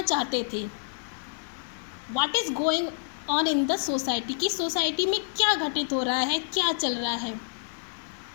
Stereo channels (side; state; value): right; silent; digital silence